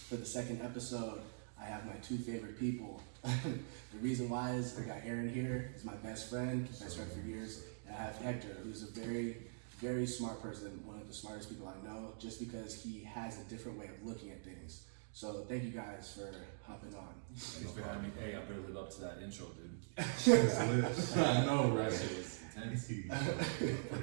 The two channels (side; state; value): left; silent; digital silence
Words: for the second episode, I have my two favorite people. The reason why is I got Aaron here. He's my best friend for years. And I have Hector, who's a very, very smart person, one of the smartest people I know, just because he has a different way of looking at things. So thank you guys for hopping on. Thanks for having me. Hey, I better live up to that intro, dude. I know, right? It was intense.